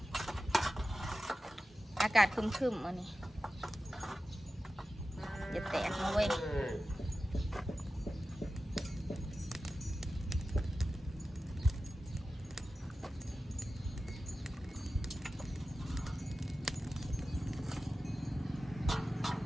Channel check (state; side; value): normal; both; correlation 0.94